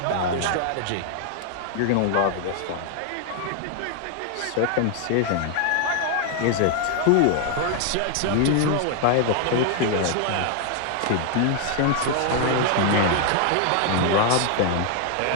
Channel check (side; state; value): both; different; correlation 0.00